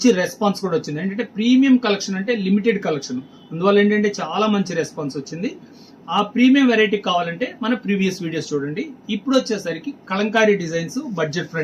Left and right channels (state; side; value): identical; both; correlation 1.00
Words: రెస్పాన్స్ కూడా వచ్చింది. ఏంటంటే ప్రీమియం కలెక్షన్ అంటే లిమిటెడ్ కలెక్షన్, అందువల్ల ఏంటంటే చాలా మంచి రెస్పాన్స్ వచ్చింది. ఆ ప్రీమియం వెరైటీ కావాలంటే మన ప్రీవియస్ వీడియోస్ చూడండి. ఇప్పుడు వచ్చేసరికి kalamkari designs, budget